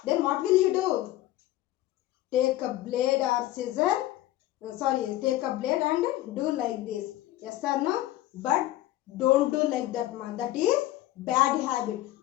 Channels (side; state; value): right; quieter; 15.4 dB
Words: Then what will you do? Take a blade or scissor. Take a blade and do like this. Yes or no? But don't do like that, man. That is bad habit.